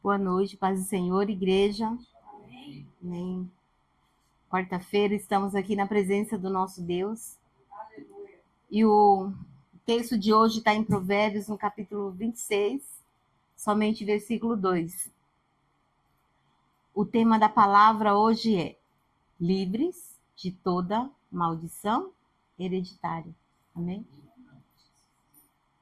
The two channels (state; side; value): identical; both; correlation 1.00